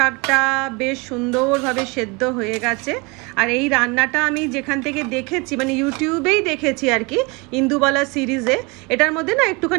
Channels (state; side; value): quieter; left; 27.6 dB